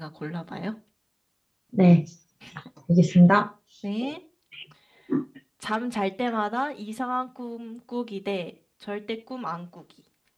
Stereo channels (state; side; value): identical; both; correlation 1.00